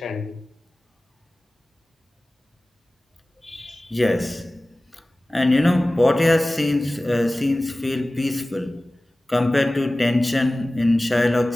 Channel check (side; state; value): both; normal; correlation 0.97